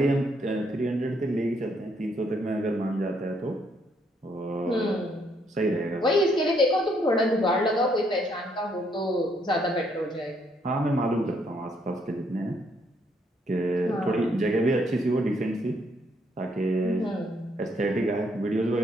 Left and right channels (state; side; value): normal; both; correlation 0.71